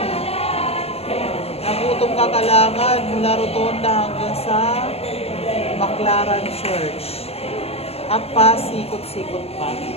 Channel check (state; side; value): late; right; 0.29 ms